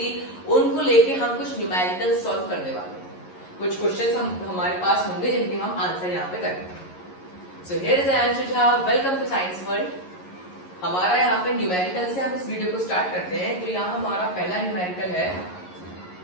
उनको लेके हम कुछ न्यूमेरिकल सॉल्व करने वाले हैं। कुछ क्वेश्चंस हमारे पास होंगे जिनके हम आंसर यहाँ पे करेंगे। So here is Anshu Jha. Welcome to Science World. हमारा यहाँ पे न्यूमेरिकल से हम इस वीडियो को स्टार्ट करते हैं। तो यहाँ हमारा पहला न्यूमेरिकल है,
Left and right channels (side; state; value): right; late; 11 ms